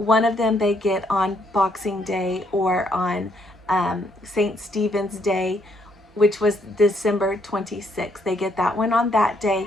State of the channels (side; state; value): both; normal; correlation 0.72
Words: of them they get on Boxing Day or on St. Stephen's Day, which was December 26th. They get that one on that